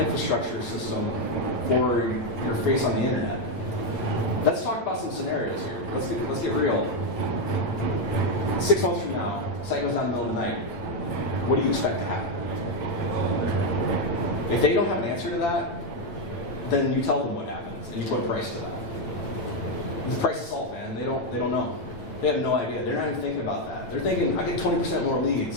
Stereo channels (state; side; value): late; right; 9.1 ms